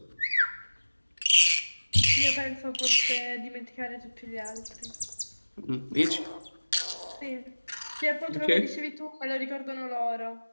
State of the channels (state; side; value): inverted; both; correlation -1.00